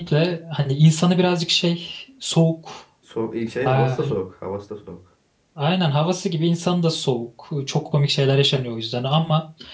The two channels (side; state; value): both; identical; correlation 1.00